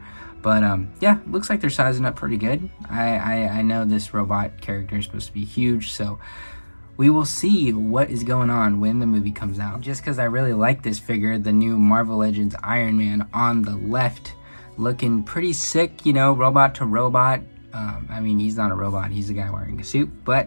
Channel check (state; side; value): inverted; both; correlation -1.00